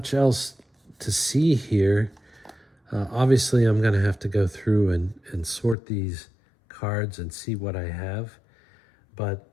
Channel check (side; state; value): right; drops out; at 5.8 s